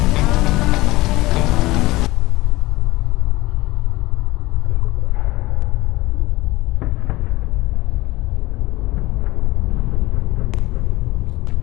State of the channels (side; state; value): right; quieter; 19.6 dB